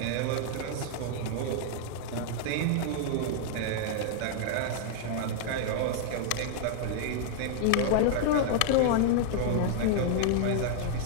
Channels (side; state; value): both; different; correlation -0.01